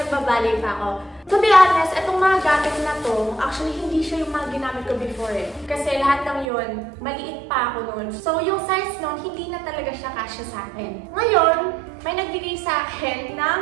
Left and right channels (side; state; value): left; drops out; at 6.5 s